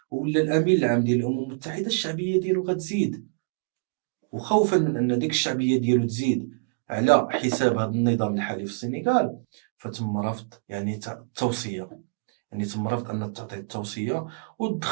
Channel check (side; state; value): left; quieter; 36.4 dB